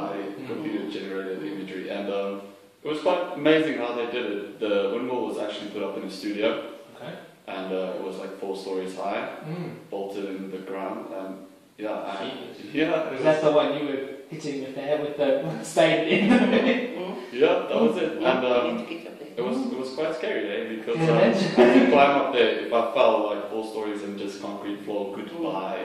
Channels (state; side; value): identical; both; correlation 1.00